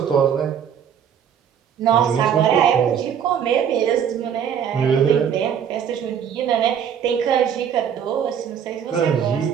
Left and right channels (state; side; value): quieter; left; 8.3 dB